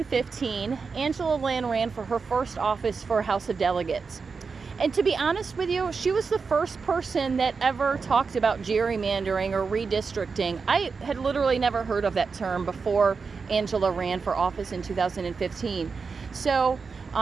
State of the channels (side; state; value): left; quieter; 5.0 dB